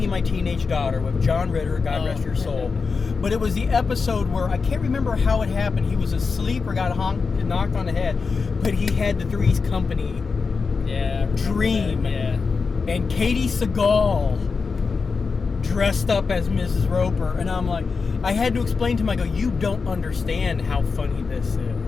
My Teenage Daughter with John Ritter, God rest your soul. But it was the episode where, I can't remember how it happened. He was asleep or got knocked on the head, but he had the Three's Company dream. Yeah. And Katie Seagal dressed up as Mrs. Roper. And I'm like, I had to explain to him, I go, "You don't understand how funny this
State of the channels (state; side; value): quieter; right; 4.8 dB